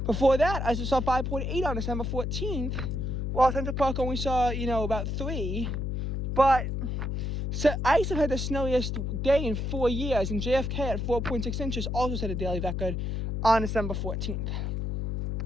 Before that, Islip saw 5.8 on December 14th, while Central Park only saw, about 3. But so Islip had the snowiest day in 4 years, and JFK at 4.6 inches also set a daily record on December 14th.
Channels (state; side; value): noise; left; hum, 2 dB below the sound